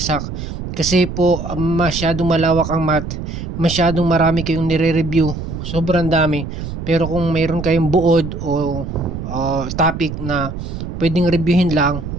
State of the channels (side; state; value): right; noise; rumble, 7 dB below the sound